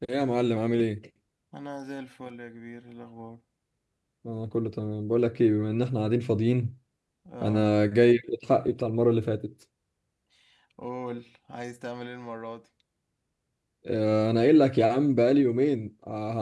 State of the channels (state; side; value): identical; both; correlation 1.00